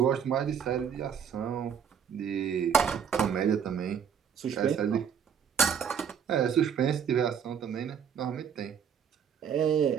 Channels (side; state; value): left; quieter; 7.7 dB